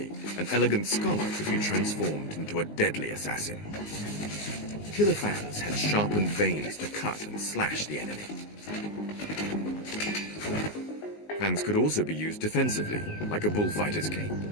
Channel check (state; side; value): late; right; 19 ms